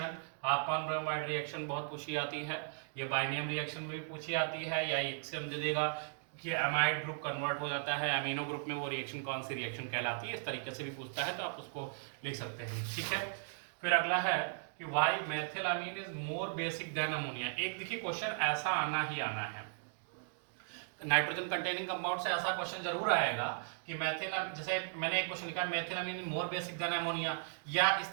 रिएक्शन बहुत पूछी आती है। ये बाइनियम रिएक्शन में भी पूछी आती है, या एक से हम दे देगा कि अमाइड ग्रुप कन्वर्ट हो जाता है अमीनो ग्रुप में, वो रिएक्शन कौन सी रिएक्शन कहलाती है, इस तरीके से भी पूछता है, तो आप उसको लिख सकते हैं। ठीक है। फिर अगला है कि why methylamine is more basic than ammonia. एक देखिए क्वेश्चन ऐसा आना ही आना है, नाइट्रोजन कंटेनिंग कंपाउंड से ऐसा क्वेश्चन जरूर आएगा कि मेथिलामीन, जैसे मैंने एक क्वेश्चन लिखा मेथिलामीन मोर बेसिक देन अमोनिया, या इस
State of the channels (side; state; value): left; silent; digital silence